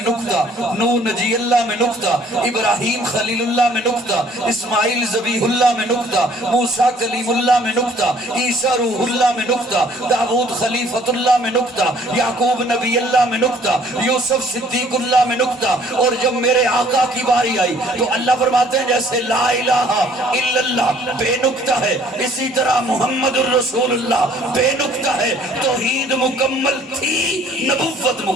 نقطہ، نوح نجی اللہ میں نقطہ، ابراہیم خلیل اللہ میں نقطہ، اسماعیل ذبیح اللہ میں نقطہ، موسیٰ کلیم اللہ میں نقطہ، عیسیٰ روح اللہ میں نقطہ، داؤد خلیفت اللہ میں نقطہ، یعقوب نبی اللہ میں نقطہ، یوسف صدیق اللہ میں نقطہ۔ اور جب میرے آقا کی باری آئی تو اللہ فرماتے ہیں جیسے لا الہ الا اللہ بے نقطہ ہے، اسی طرح محمد الرسول اللہ بے نقطہ ہے۔ توحید مکمل تھی، نبوت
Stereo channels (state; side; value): normal; both; correlation 0.58